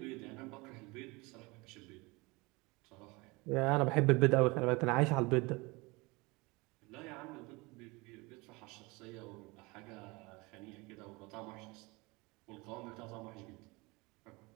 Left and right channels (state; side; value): quieter; left; 24.9 dB